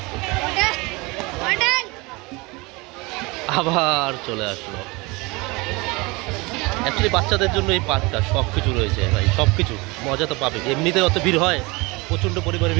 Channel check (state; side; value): quieter; left; 25.1 dB